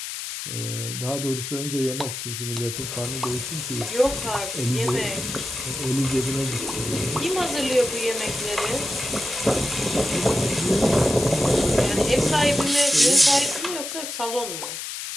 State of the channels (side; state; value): left; noise; hiss, 6 dB below the sound